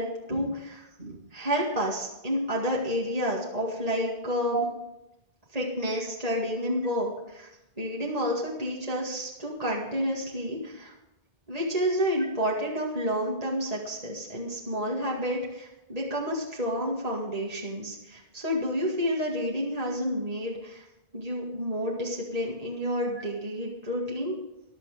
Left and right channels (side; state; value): left; late; 1.8 ms